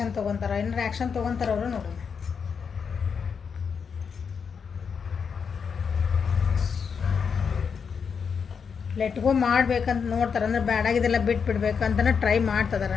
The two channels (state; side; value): quieter; right; 6.2 dB